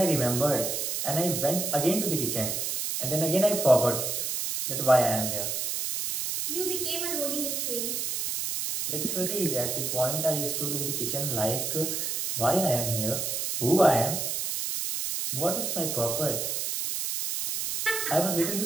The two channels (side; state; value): right; noise; hiss, 1 dB below the sound